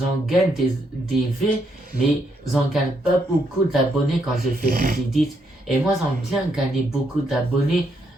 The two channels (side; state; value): both; normal; correlation 0.76